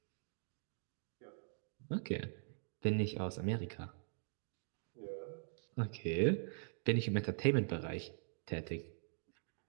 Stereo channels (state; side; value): silent; left; digital silence